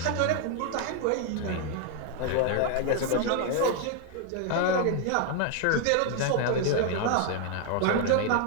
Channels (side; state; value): both; different; correlation 0.01